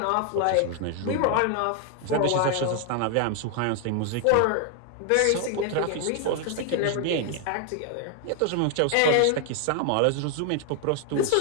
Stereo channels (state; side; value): different; both; correlation 0.00